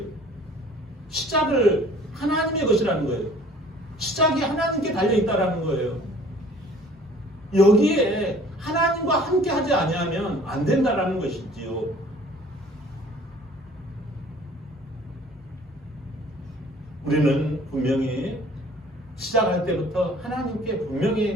시작을 하나님의 것이라는 거예요. 시작이 하나님께 달려있다라는 거예요. 여기에 하나님과 함께 하지 아니하면 안 된다라는 것이지요. 우리는 분명히 시작할 때부터 하나님께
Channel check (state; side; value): normal; both; correlation 0.52